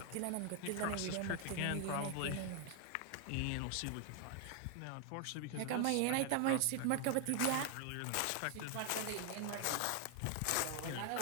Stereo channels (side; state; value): both; different; correlation 0.00